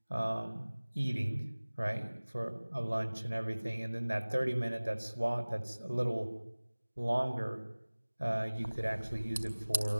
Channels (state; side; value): inverted; both; correlation -1.00